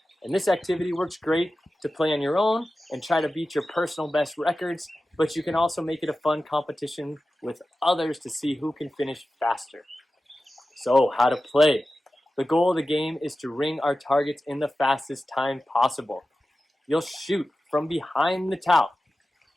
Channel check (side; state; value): both; normal; correlation 0.94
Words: And this activity works great to play on your own and try to beat your personal best records, but you can also make it a fun competition with others to see who can finish faster. So, how to play. The goal of the game is to ring our targets in the fastest time possible. You'll shoot from behind the towel,